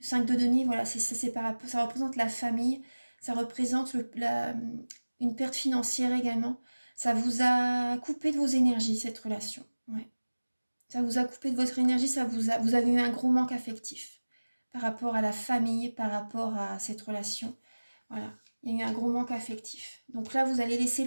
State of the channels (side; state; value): both; inverted; correlation -1.00